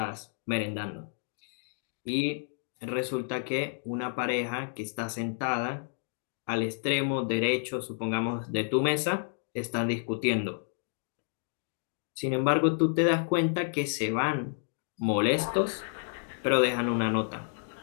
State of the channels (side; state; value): right; silent; digital silence